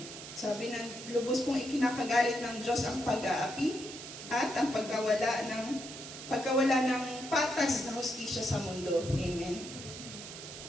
Sabi ng lubos pong ikinakagalit ng Diyos ang pag-aapi at ang pagkawala ng patas na hustisya sa mundo. Amen.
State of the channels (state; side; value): noise; right; hiss, 11 dB below the sound